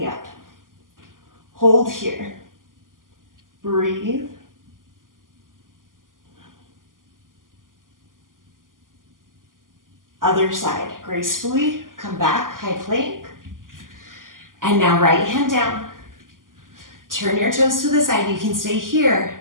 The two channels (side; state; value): left; late; 0.89 ms